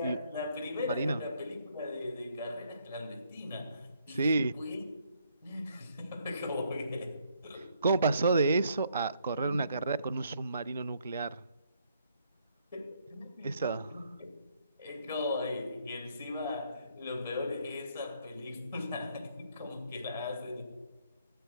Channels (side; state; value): both; inverted; correlation -0.70